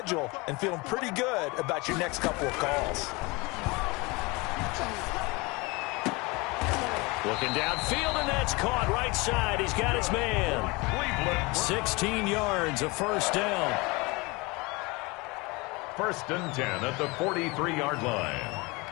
and feeling pretty good about your next couple of calls. Looking downfield, and that's caught right side. He's got his man. 16 yards, a first down. 1st and 10 at the 43-yard line.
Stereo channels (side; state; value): right; quieter; 25.6 dB